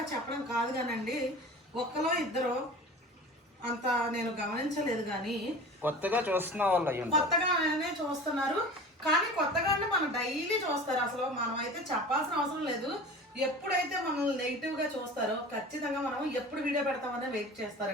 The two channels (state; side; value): normal; both; correlation 0.37